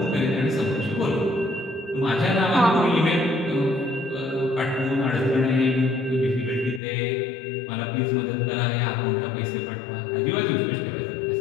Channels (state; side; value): drops out; right; at 6.8 s